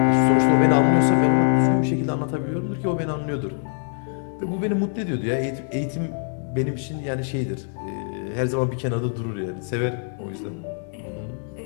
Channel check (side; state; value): right; silent; 60 dB below the other